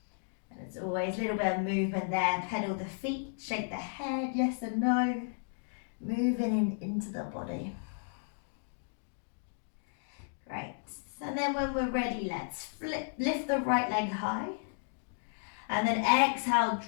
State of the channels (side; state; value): right; silent; digital silence